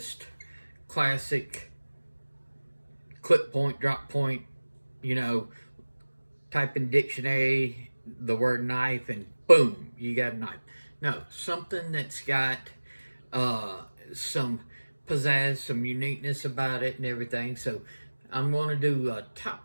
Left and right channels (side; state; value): both; inverted; correlation -1.00